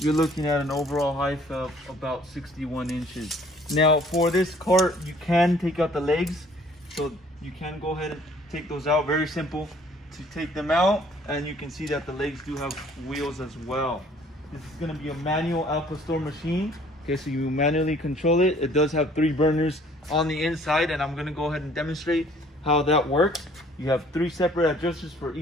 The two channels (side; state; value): both; normal; correlation 0.57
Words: looking at an overall height of about 61 inches. Now for this cart, you can take out the legs, so you can go ahead and take those out. Very simple to take them out, and you can see that the legs do have wheels as well. This is going to be a manual Al Pastor machine. Okay, so you manually control it. It does have 3 burners on the inside, and I'm going to go ahead and demonstrate how that works. You have 3 separate adjusters for